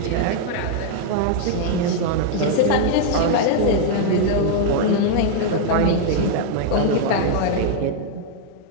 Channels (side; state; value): both; different; correlation -0.01